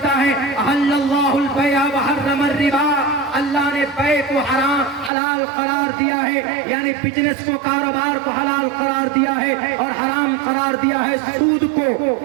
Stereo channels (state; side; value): drops out; left; at 5.1 s